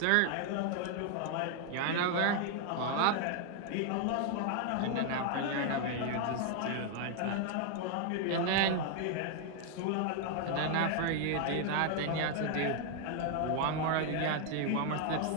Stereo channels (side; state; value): both; different; correlation 0.00